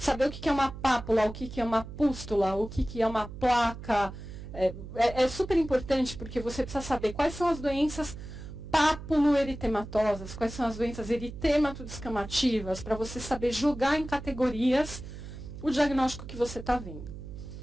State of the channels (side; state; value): right; noise; hum, 12 dB below the sound